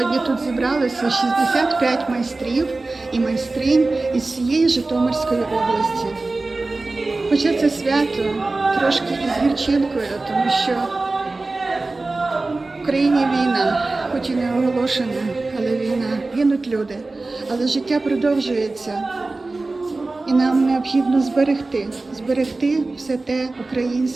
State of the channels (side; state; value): left; quieter; 3.3 dB